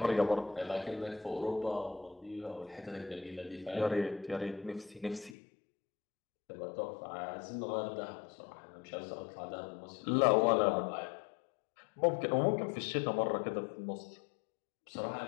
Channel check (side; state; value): right; drops out; at 5.4 s